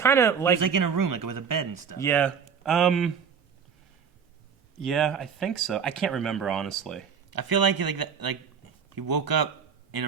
of He like... was, in a room, with a bed and stuff. Yeah. Yeah, I think so. I can't remember, honestly. I feel like he woke up in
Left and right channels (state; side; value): quieter; left; 6.8 dB